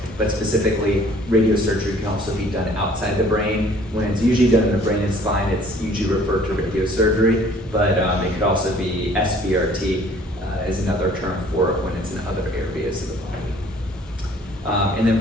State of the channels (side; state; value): both; normal; correlation 0.55